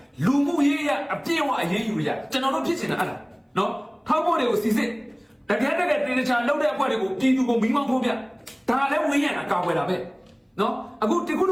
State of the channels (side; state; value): both; identical; correlation 1.00